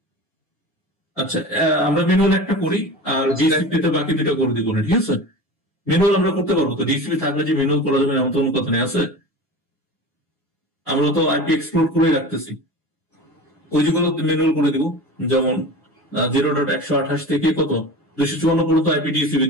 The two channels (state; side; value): normal; both; correlation 0.33